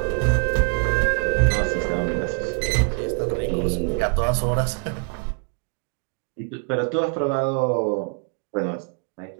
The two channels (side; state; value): left; quieter; 39.6 dB